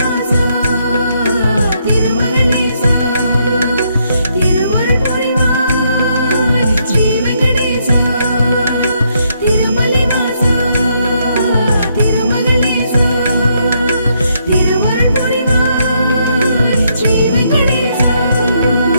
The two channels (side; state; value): both; inverted; correlation -0.75